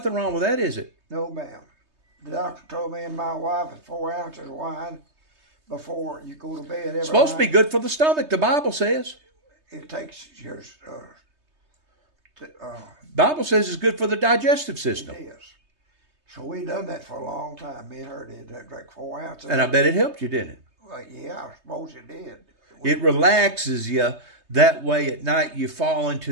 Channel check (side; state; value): left; late; 3.2 ms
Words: wrong with that, is it? No, ma'am. The doctor told me and my wife that 4 ounces of wine before you go to bed every It's supposed to be night, good for the stomach, the Bible says. it takes your Bible says it's good for the digestive system. it is. So we done that for a long time. Me and her did that, drank 4 ounces. And I bet it helped you, didn't it? Well, yeah, I suppose it did. It relaxes you. That way at night you fall into